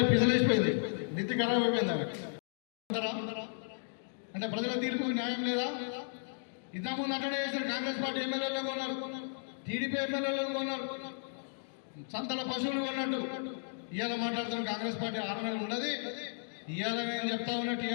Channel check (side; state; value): right; silent; digital silence